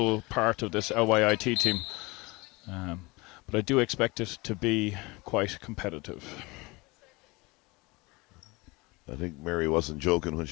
part of this LYIT team. But I do expect it to be quite competitive. I think Mary wasn't joking when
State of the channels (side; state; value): right; quieter; 24.3 dB